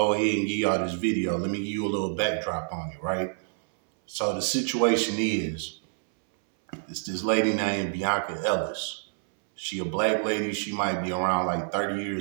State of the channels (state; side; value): silent; left; 60 dB below the other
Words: ahead and give y'all this video, let me give you a little backdrop on it, right? So the situation is, it's this lady named Bianca Ellis. She a black lady. She might be around like 30